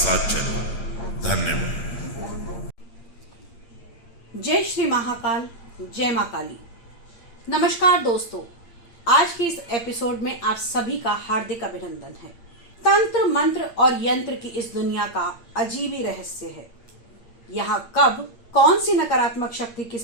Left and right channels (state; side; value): late; right; 8.7 ms